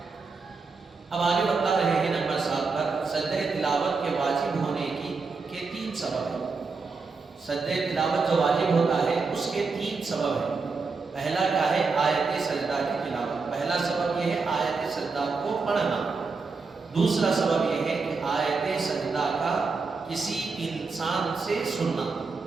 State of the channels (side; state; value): left; quieter; 4.4 dB